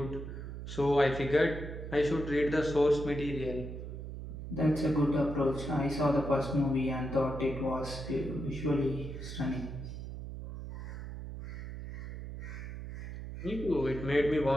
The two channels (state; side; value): noise; right; hum, 8 dB below the sound